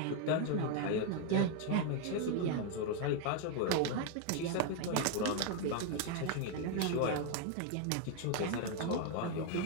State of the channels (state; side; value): different; both; correlation 0.01